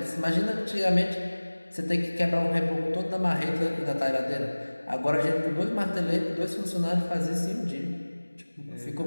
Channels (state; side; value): inverted; both; correlation -1.00